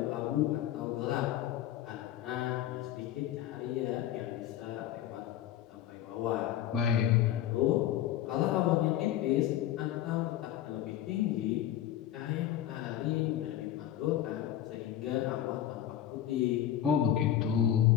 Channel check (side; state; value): right; quieter; 11.8 dB